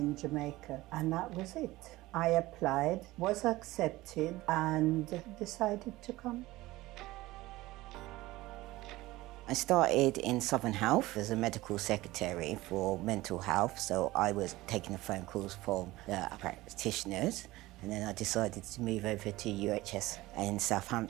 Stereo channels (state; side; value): quieter; left; 18.5 dB